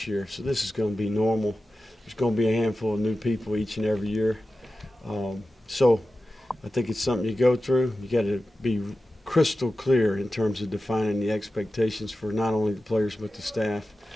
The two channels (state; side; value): normal; both; correlation 0.94